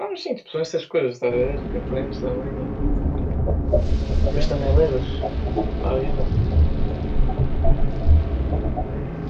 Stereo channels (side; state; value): both; identical; correlation 1.00